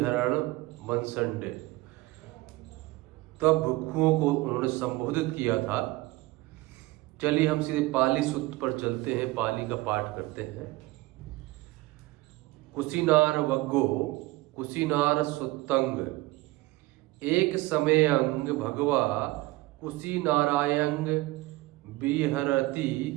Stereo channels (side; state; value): left; quieter; 19.8 dB